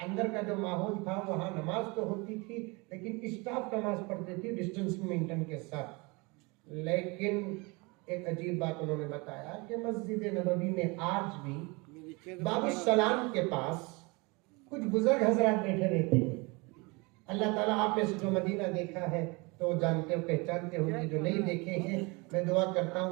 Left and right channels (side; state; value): left; quieter; 27.2 dB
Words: अंदर का जो माहौल था, वहाँ नमाज तो होती थी लेकिन स्टाफ नमाज पढ़ती थी डिस्टेंस मेंटेन के साथ। लेकिन एक अजीब बात उन्होंने बताया कि मस्जिद नबवी में आज भी बाबू सलाम के पास कुछ बुजुर्ग हजरात बैठे रहते हैं। अल्लाह ताला आप में से जो मदीना देखा है तो जानते हो, पहचानते होंगे, जो नहीं देखे हैं मैं दुआ करता